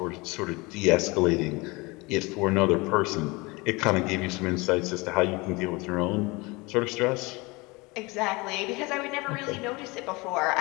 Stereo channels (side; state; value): right; quieter; 24.8 dB